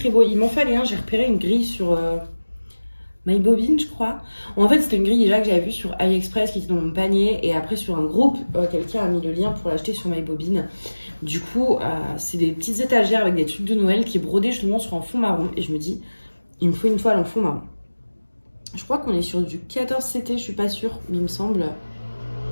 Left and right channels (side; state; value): both; inverted; correlation -1.00